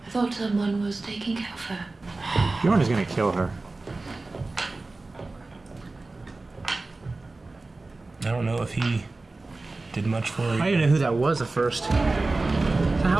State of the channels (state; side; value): quieter; left; 3.3 dB